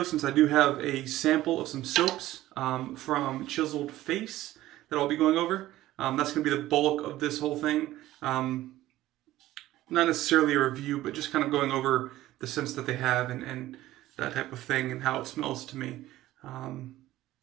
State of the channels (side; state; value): left; quieter; 15.4 dB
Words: since I do have a sample of some soaps from Chiseled Face that I'll be going over. That's going to be the bulk of this whole thing. Not necessarily a review, but just kind of going over the scents that they have and that type of thing and how it smells to me.